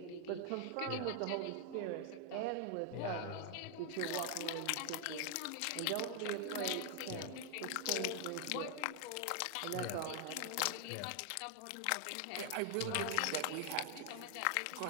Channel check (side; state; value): both; different; correlation 0.00